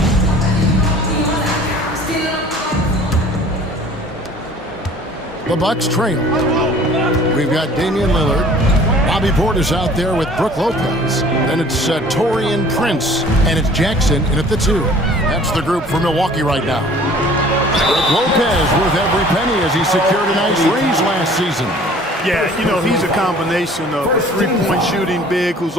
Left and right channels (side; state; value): both; normal; correlation 0.50